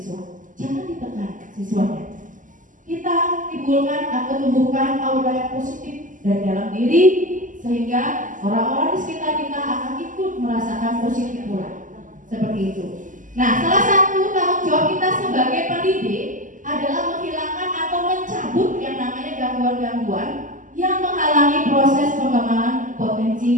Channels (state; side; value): late; left; 0.38 ms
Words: Jangan ditekan siswanya. Kita timbulkan atau tumbuhkan aura yang positif dari dalam diri, sehingga orang-orang di sekitar kita akan ikut merasakan positif pula. Seperti itu. Nah, salah satu tanggung jawab kita sebagai pendidik adalah menghilangkan atau mencabut yang namanya gangguan-gangguan yang menghalangi proses pengembangan potensi